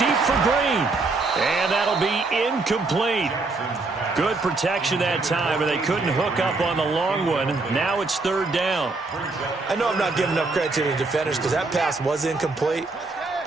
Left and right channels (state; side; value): quieter; left; 3.6 dB